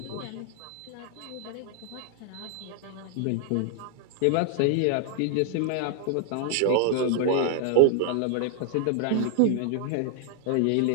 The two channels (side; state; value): both; different; correlation 0.00